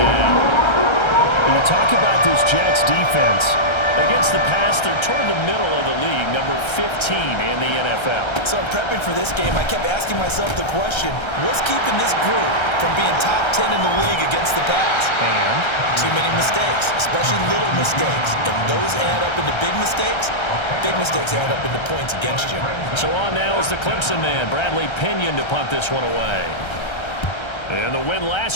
down. When you talk about this Jets defense, against the pass, they're toward the middle of the league, number 15 in the NFL. So I'm prepping for this game. I kept asking myself the question, what's keeping this group from being top 10 in the league against the pass? And too many mistakes, especially little mistakes. And those add up into big mistakes. Big mistakes add up into points against you. So on now is the Clemson man, Bradley Pinion, to punt this one away. And the win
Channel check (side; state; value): right; late; 1.3 ms